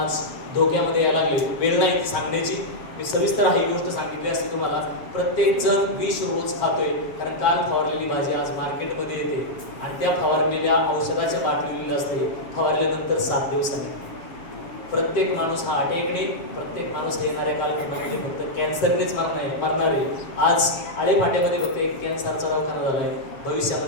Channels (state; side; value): late; right; 7.6 ms